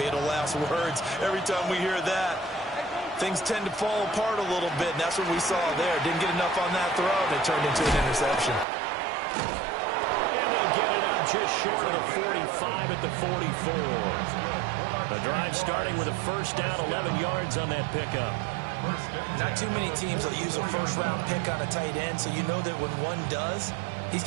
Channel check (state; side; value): drops out; left; at 8.7 s